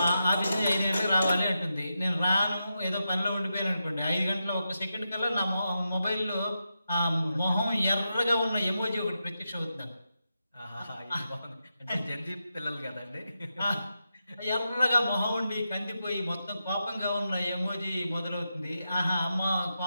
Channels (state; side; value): inverted; both; correlation -0.87